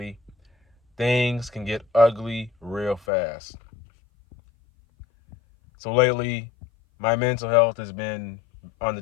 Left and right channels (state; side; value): drops out; right; at 3.0 s